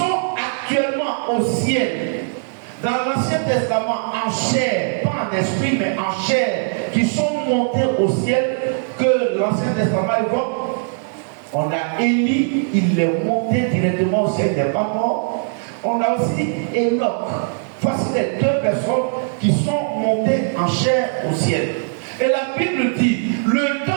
actuellement au ciel, dans l'Ancien Testament, en chair, pas en esprit, mais en chair, qui sont montés au ciel, que l'Ancien Testament évoque. On a Élie, il est monté directement au ciel, il n'est pas mort. On a aussi Enoch. Voici les deux personnes qui sont montées en chair au ciel. Et la Bible dit, le temps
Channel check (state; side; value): silent; left; digital silence